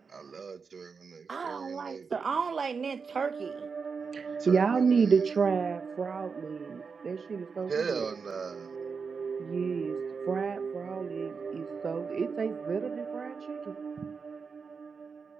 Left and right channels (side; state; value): left; quieter; 5.4 dB